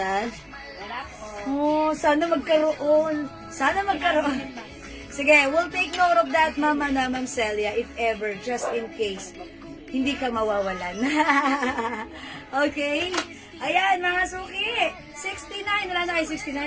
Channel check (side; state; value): both; identical; correlation 1.00